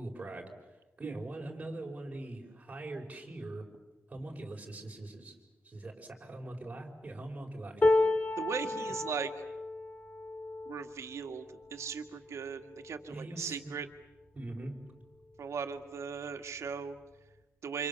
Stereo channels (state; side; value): normal; both; correlation 0.80